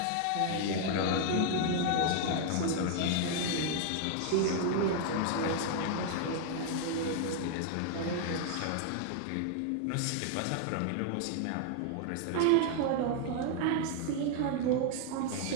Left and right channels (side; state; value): both; different; correlation 0.00